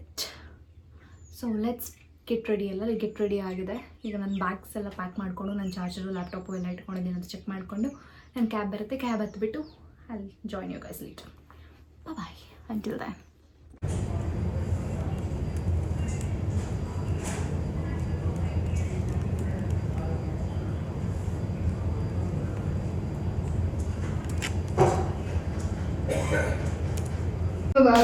ready. ಎಲ್ಲ get ready ಆಗಿದೆ. ಈಗ ನನ್ನ bags ಎಲ್ಲ pack ಮಾಡಿಕೊಂಡು, ನನ್ನ charger laptop ಎಲ್ಲ ಇಟ್ಕೊಂಡಿದ್ದೀನಿ ಅಂತ ಚೆಕ್ ಮಾಡಿಕೊಂಡು ನನ್ನ ಕ್ಯಾಬ್ ಬರುತ್ತೆ. ಕ್ಯಾಬ್ ಹತ್ತಿಬಿಟ್ಟು I'll join you guys later. Bye until then.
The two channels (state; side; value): identical; both; correlation 1.00